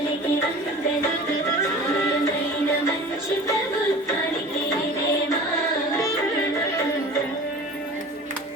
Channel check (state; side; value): normal; both; correlation 0.39